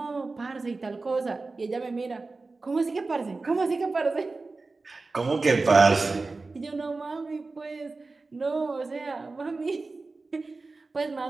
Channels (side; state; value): left; quieter; 3.7 dB